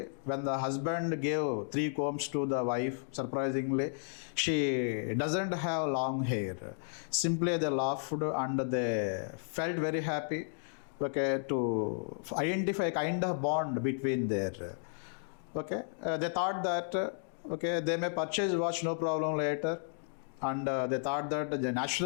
when the husband gave 3 combs to the wife, surprisingly, she doesn't have long hair. Simply they laughed and they felt very happy. Okay, to identify a kind of bond between there. Okay, they thought that okay, they may purchase watch, no problem later, and they thought that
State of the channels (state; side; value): silent; right; digital silence